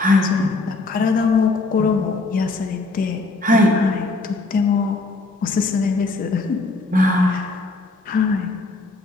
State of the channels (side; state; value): right; quieter; 3.4 dB